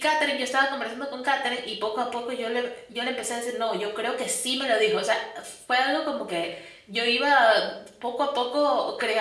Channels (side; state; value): both; identical; correlation 1.00